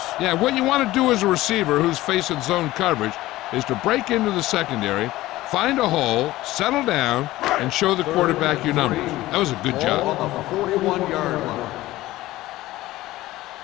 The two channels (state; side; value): quieter; right; 16.9 dB